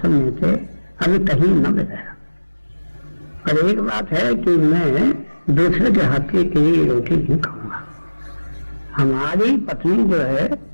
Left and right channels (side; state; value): both; inverted; correlation -1.00